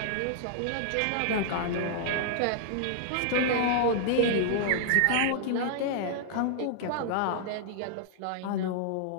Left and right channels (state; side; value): different; both; correlation -0.01